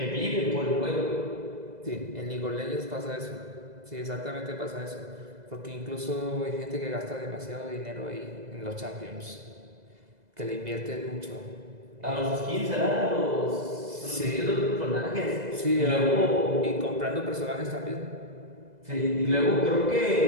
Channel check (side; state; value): left; late; 2.0 ms